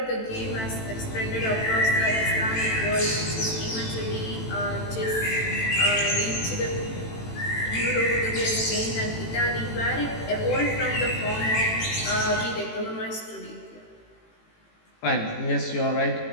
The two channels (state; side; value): late; right; 18 ms